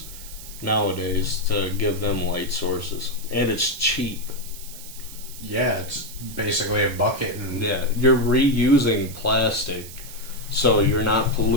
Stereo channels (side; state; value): right; noise; hiss, 14 dB below the sound